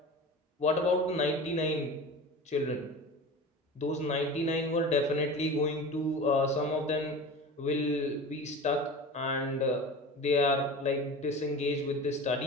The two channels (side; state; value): both; normal; correlation 0.34